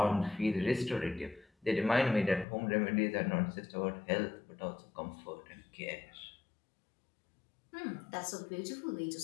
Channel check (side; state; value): right; drops out; at 2.5 s